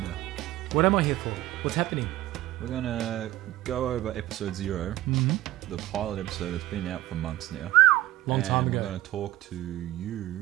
now? What am I here for? What's happening? We're going to go over episode 0, the pilot episode that's been out for months now. Long time ago. We're going to talk to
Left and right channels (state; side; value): quieter; left; 16.1 dB